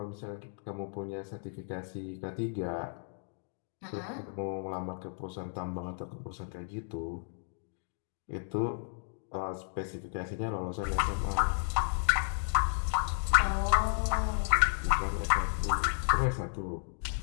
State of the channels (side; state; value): right; silent; digital silence